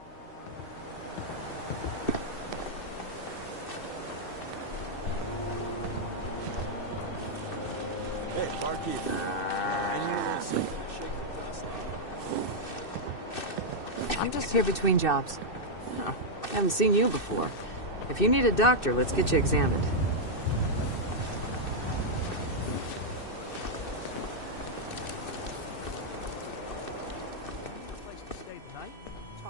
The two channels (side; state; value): right; late; 2.6 ms